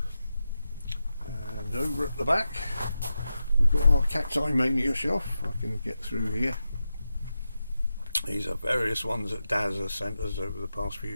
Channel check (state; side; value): inverted; both; correlation -0.90